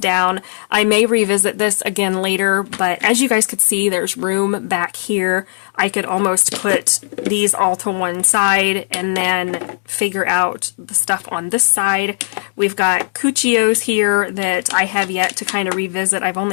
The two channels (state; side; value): silent; right; 68 dB below the other